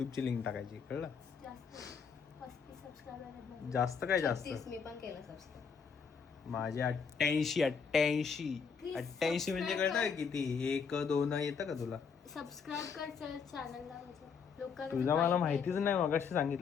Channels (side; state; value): right; quieter; 6.1 dB